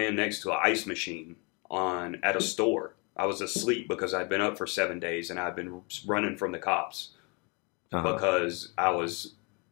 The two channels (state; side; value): quieter; right; 31.8 dB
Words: next to an ice machine at a store. I was asleep because I'd been up for 7 days and I'd been running from the cops because I was